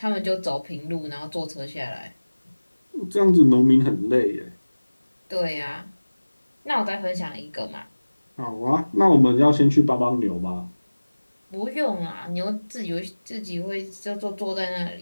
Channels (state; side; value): inverted; both; correlation -1.00